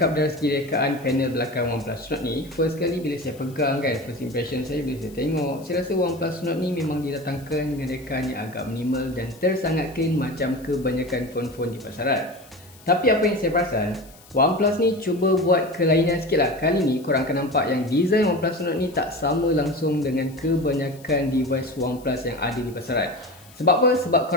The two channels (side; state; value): left; noise; hiss, 24 dB below the sound